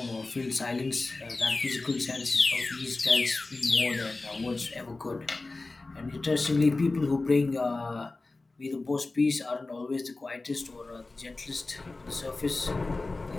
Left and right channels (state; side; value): quieter; right; 3.4 dB